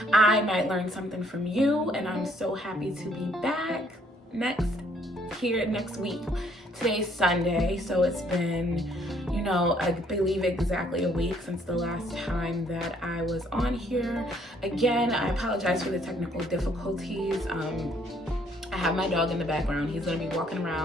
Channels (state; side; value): normal; both; correlation 0.65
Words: I might learn something from you. And I'm so happy to be back next week. Today's Sunday, so it's been, I believe exactly a week since the last time that I was on here. Again, I apologize for the technical difficulties. I have my dog in the background. He's gonna be walking